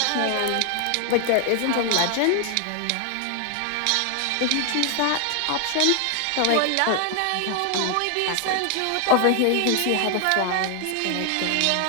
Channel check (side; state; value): both; different; correlation 0.00